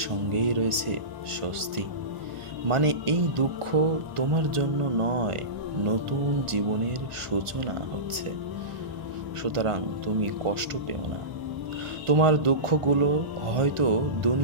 সঙ্গেই রয়েছে স্বস্তি। মানে এই দুঃখ তোমার জন্য নয়, নতুন জীবনের সূচনা হচ্ছে। সুতরাং তুমি কষ্ট পেও না। তোমার দুঃখগুলো হয়তো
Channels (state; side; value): late; left; 1.4 ms